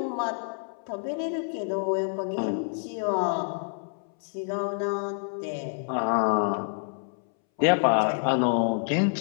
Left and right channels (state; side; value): silent; right; 60 dB below the other